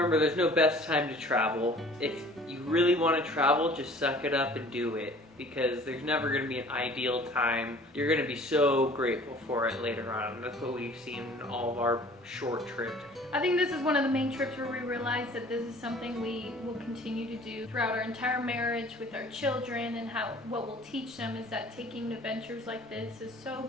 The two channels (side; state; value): both; normal; correlation 0.50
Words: there's no best time to travel. If you really want to travel, just suck it up and do it, because there's never going to be an ideal time. You're going to be so grateful for it later on. That's what we've seen in all of our short trips. I think this is one of the main trips where we realized that this is something we will continue to do throughout our entire marriage with our children, and what we'll teach them is that taking adventures like this is so